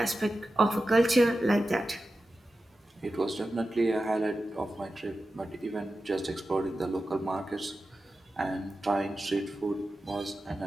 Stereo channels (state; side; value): normal; both; correlation 0.92